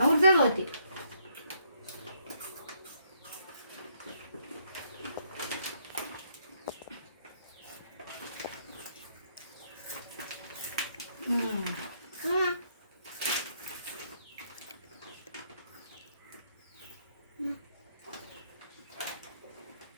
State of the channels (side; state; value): both; inverted; correlation -0.71